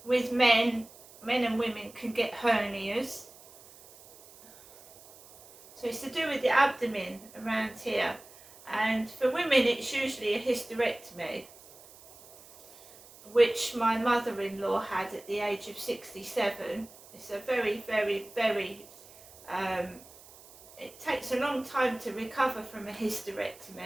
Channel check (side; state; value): right; noise; hiss, 22 dB below the sound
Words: with men and women can get hernias. So it's to do with the abdomen around here. And for women it's usually a hysterectomy, which my mother-in-law had at the age of 67. It's a very, very, very, it takes a long time to recover from a